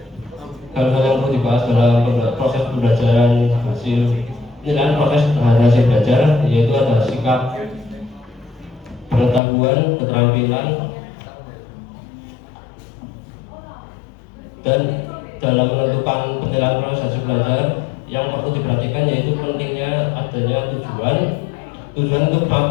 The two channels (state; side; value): drops out; right; at 9.4 s